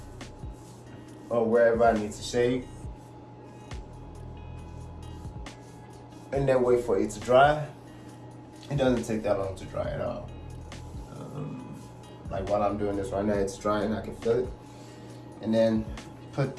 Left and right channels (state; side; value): identical; both; correlation 1.00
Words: or wherever I need to shave, and then wait for it to dry. It doesn't take that long to dry at all. Like while I'm doing this right now, it's drying, I can feel it. And then put